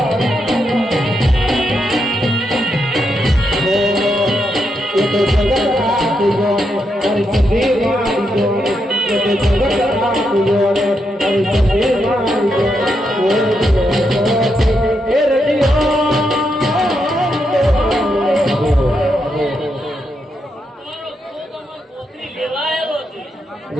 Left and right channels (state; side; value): normal; both; correlation 0.82